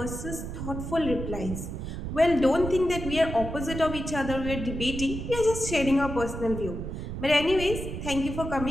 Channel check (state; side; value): noise; right; rumble, 6 dB below the sound